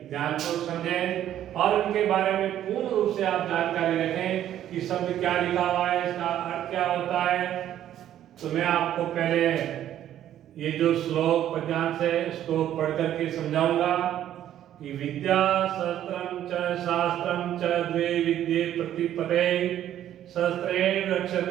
ध्यानपूर्वक समझें और उनके बारे में पूर्ण रूप से आप जानकारी रखें कि शब्द क्या लिखा हुआ है, इसका अर्थ क्या होता है। तो मैं आपको पहले ये जो श्लोक पद्यांश है इसको पढ़ करके समझाऊंगा कि विद्या शस्त्रम च शास्त्रम च द्वे विद्ये प्रतिपदे शस्त्रेण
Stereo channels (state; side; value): quieter; left; 11.5 dB